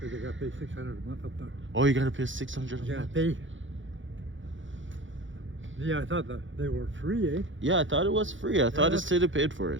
they gotta pay $600 a month up there. Oh, you gotta pay $600 a You gotta month? pay. Yeah, I thought that they were free, eh? Yeah, I thought it was free. I thought the that's- city paid for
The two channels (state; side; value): late; left; 0.56 ms